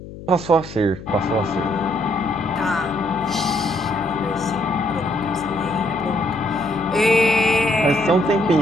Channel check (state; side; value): noise; left; hum, 14 dB below the sound